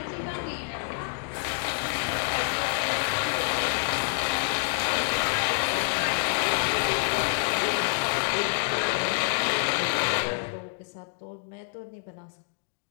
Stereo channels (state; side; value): silent; right; 60 dB below the other